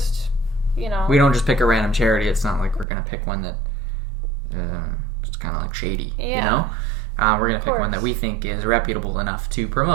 we don't just pick a random charity. It's not like we're going to pick one that it's kind of like shady, you know? We're going to pick one that we think is reputable enough to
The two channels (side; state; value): left; drops out; at 2.9 s